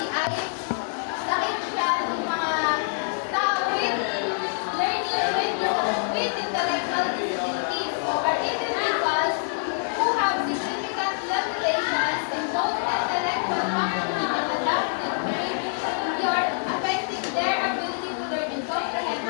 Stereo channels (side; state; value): right; silent; digital silence